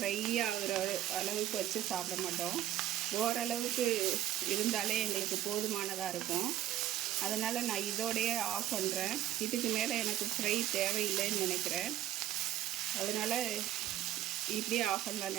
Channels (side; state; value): left; quieter; 12.6 dB